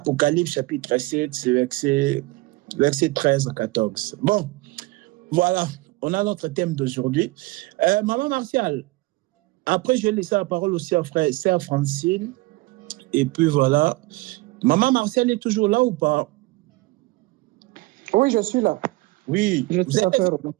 chapitre 7, c'est verset 13 à 14. Bon, voilà, on a notre thème d'aujourd'hui. Maman Martial, après je vais laisser la parole aussi à sœur Francine. Et puis voilà. Maman Martial est toujours là ou pas? Oui, je suis là. Oui. Je suis là.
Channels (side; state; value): left; quieter; 21.6 dB